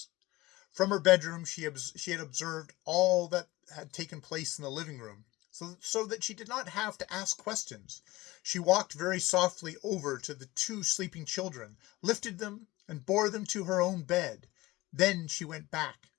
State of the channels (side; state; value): right; quieter; 19.6 dB